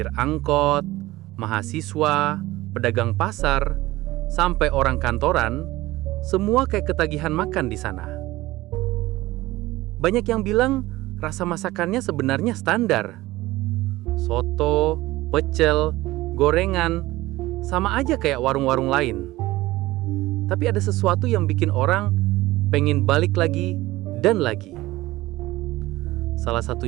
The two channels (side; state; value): left; quieter; 18.0 dB